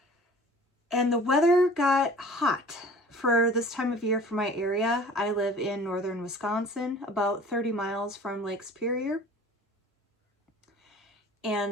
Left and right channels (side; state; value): both; normal; correlation 0.46